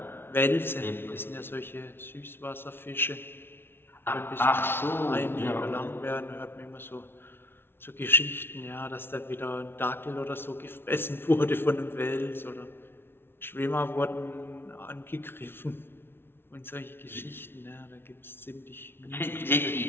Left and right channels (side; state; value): right; late; 0.11 ms